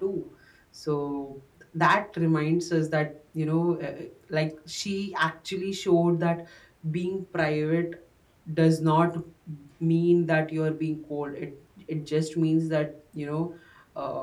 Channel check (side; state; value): both; identical; correlation 1.00